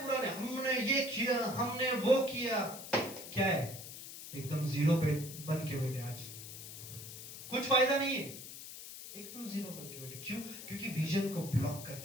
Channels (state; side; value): noise; left; hiss, 11 dB below the sound